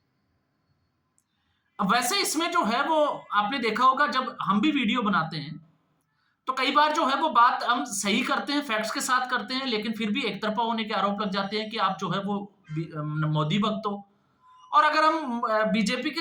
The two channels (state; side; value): identical; both; correlation 1.00